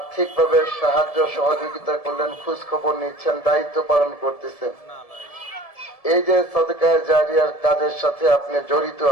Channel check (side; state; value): right; late; 1.7 ms